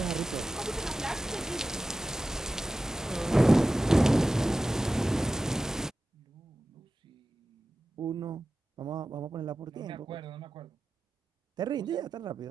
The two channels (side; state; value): both; normal; correlation 0.93